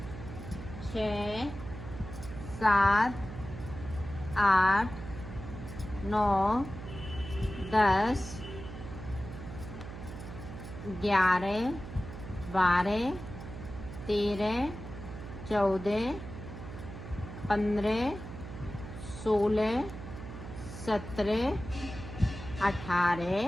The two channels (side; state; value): right; noise; hum, 11 dB below the sound